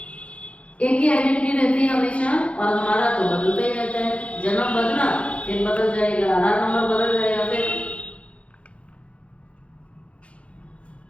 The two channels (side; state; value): right; late; 0.062 ms